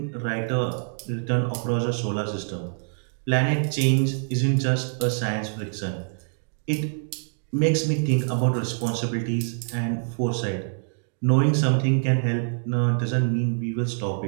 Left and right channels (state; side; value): silent; left; digital silence